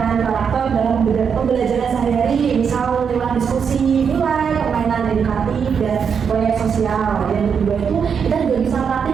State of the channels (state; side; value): quieter; left; 6.7 dB